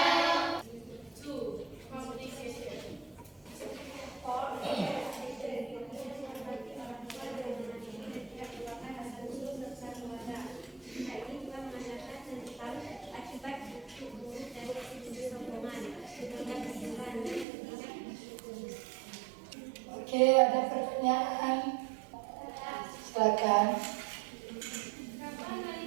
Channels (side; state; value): left; drops out; at 17.4 s